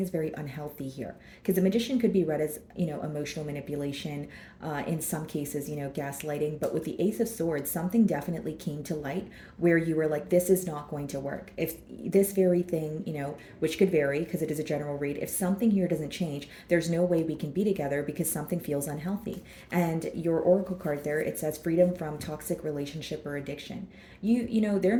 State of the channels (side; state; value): both; identical; correlation 1.00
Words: is very unhealthy here. Because the Magician could be read as, emotional manipulation, in some cases, gaslighting. But with the Ace of Swords, something definitely came to light where you were like, this is not going to work. If this very thing, which could vary because it is a general read, if something here doesn't change, there's no way we can be together because something feels unhealthy. And your Oracle card there, it says freedom from toxic relationship or addiction. There